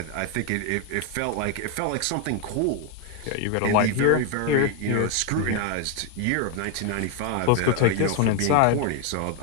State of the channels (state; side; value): different; both; correlation 0.01